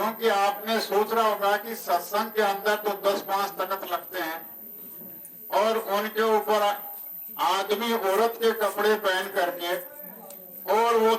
आपने सोच रहा होगा कि सत्संग के अंदर तो 10-5 तख्त लगते हैं और उनके ऊपर आदमी औरत के कपड़े पहन करके और वो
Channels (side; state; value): both; identical; correlation 1.00